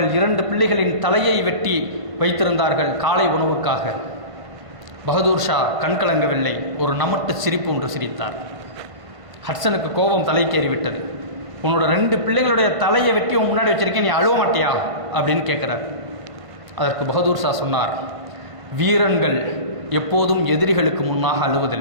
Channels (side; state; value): left; late; 1.5 ms